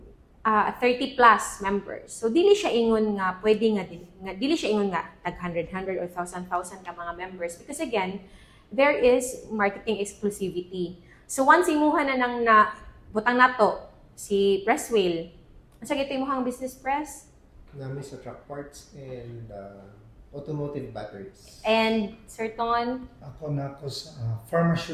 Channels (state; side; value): identical; both; correlation 1.00